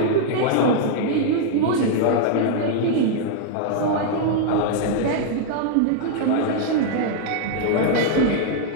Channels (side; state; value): both; different; correlation -0.01